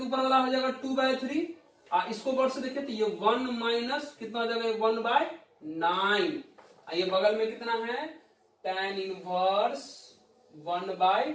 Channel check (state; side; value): identical; both; correlation 1.00